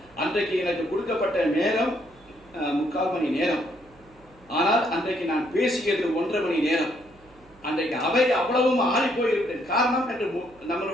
அன்றைக்கு எனக்கு கொடுக்கப்பட்ட நேரம் 3/4 மணி நேரம், ஆனால் அன்றைக்கு நான் பேசியது 1.5 மணி நேரம். அன்றைக்கு அவை அவ்வளவும் ஆறி போயிருக்கிறது. காரணம் என்று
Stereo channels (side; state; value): right; noise; hum, 28 dB below the sound